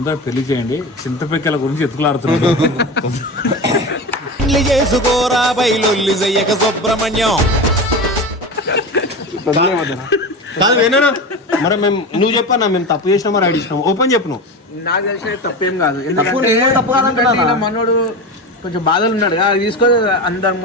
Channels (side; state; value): both; normal; correlation 0.25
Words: పెళ్లి చేయండి. చింతపిక్కల గురించి ఎత్తుకులాడుతున్నాడు. చేసుకోరా బయలొల్లి చెయ్యక సుబ్రహ్మణ్యం. కాదు వేనా మరి మేము నువ్వు చెప్పన్నా మేము తప్పు చేసినా మరి ఐడి ఇచ్చినాం ఓపెన్ చెప్పు. నువ్వు నాకు తెలిసిన తప్పేం కాదు, ఎందుకంటే మనోడు కొంచెం బాధలు ఉన్నాడు కదా, అది తీసుకొని అందరం